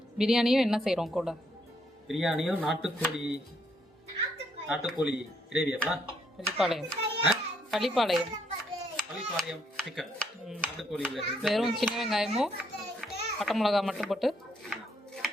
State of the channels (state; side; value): normal; both; correlation 0.72